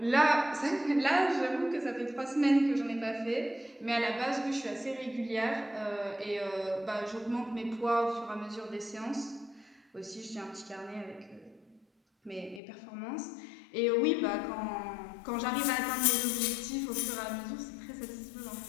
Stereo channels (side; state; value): right; drops out; at 12.6 s